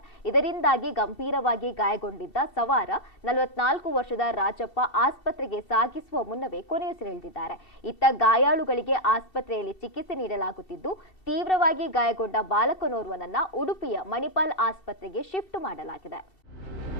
ಇದರಿಂದಾಗಿ ಗಂಭೀರವಾಗಿ ಗಾಯಗೊಂಡಿದ್ದ ಸವಾರ 44 ವರ್ಷದ ರಾಜಪ್ಪ ಆಸ್ಪತ್ರೆಗೆ ಸಾಗಿಸುವ ಮುನ್ನವೇ ಕೊನೆಯುಸಿರೆಳೆದಿದ್ದಾರೆ. ಇತ್ತ ಗಾಯಾಳುಗಳಿಗೆ ಆಸ್ಪತ್ರೆಯಲ್ಲಿ ಚಿಕಿತ್ಸೆ ನೀಡಲಾಗುತ್ತಿದ್ದು ತೀವ್ರವಾಗಿ ಗಾಯಗೊಂಡ ಬಾಲಕನೋರ್ವನನ್ನ ಉಡುಪಿಯ ಮಣಿಪಾಲ್ ಆಸ್ಪತ್ರೆಗೆ ಶಿಫ್ಟ್ ಮಾಡಲಾಗಿದೆ.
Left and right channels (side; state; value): right; late; 2.7 ms